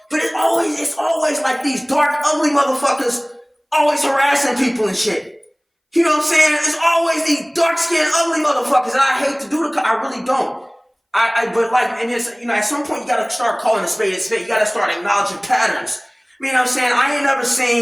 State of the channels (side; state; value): both; identical; correlation 1.00